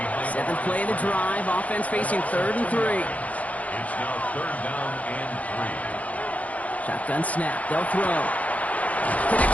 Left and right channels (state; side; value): late; right; 0.069 ms